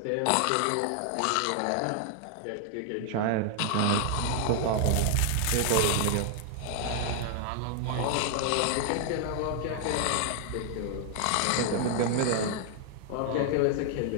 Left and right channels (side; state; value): both; different; correlation 0.00